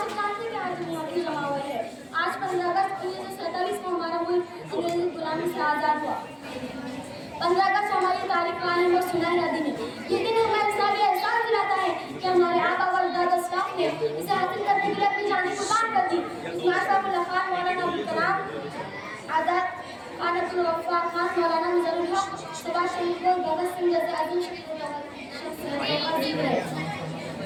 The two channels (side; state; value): both; identical; correlation 1.00